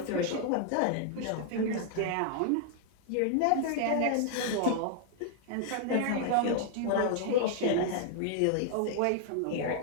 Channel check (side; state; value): both; different; correlation 0.00